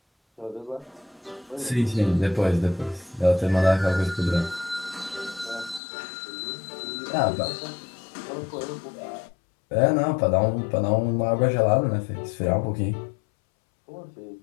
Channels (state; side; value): drops out; right; at 5.8 s